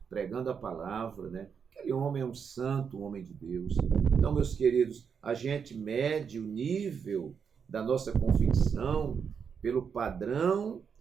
pregando a palavra, né? Aquele homem é um santo, um homem de Deus. Então, meus queridos, a gente mede o nível da nossa convicção pelo padrão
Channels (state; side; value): quieter; left; 6.7 dB